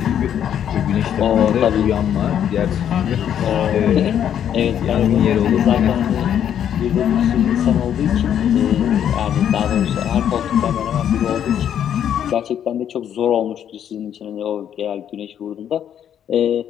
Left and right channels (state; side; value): quieter; right; 9.5 dB